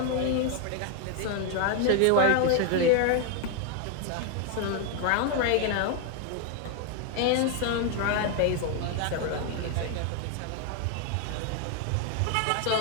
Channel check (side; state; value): both; different; correlation 0.01